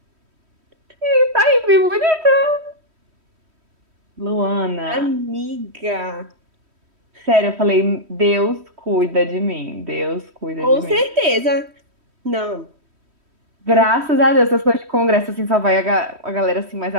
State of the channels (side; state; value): left; late; 3.1 ms